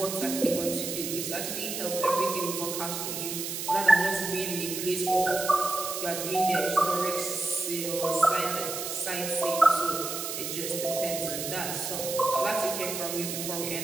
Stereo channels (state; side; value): noise; right; hiss, 5 dB below the sound